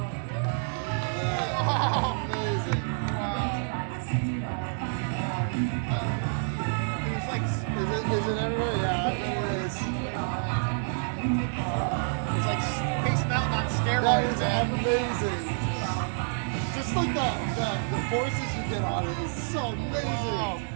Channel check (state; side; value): silent; left; 59 dB below the other